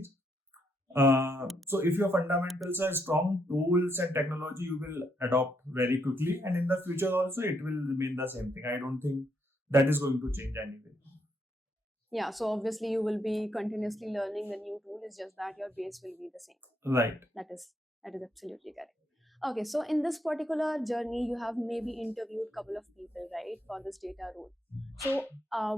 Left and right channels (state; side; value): normal; both; correlation 0.76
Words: So if your fundamentals are strong, tools and technology you will adopt very quickly, and in the future also it will remain the same thing. I don't think that is going to change anyway. Yeah, so obviously you will be continuously learning the new tool. It's just that your base will be the same. Right. That is absolutely correct. Okay, so in this particular journey, you have maybe interviewed a couple of people, right, for this data role. So,